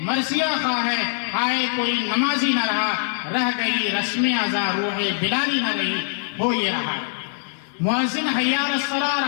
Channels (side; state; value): right; silent; digital silence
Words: خواہ ہیں، ہائے کوئی نمازی نہ رہا، رہ گئی رسم ازاں روح بلالی نہ رہی، ہو یہ رہا ہے۔ مؤذن حی علی